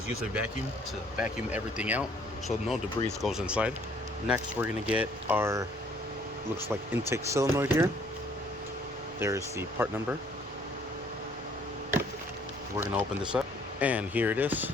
use a vacuum to vacuum everything out so no debris goes inside. Next we're going to get our, looks like, intake solenoid here. There's the part number. We're going to open this up, and here it is.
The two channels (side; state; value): both; normal; correlation 0.61